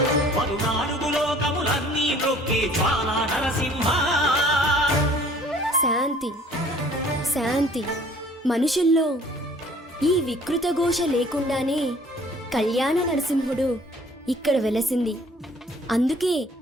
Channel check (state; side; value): normal; both; correlation 0.54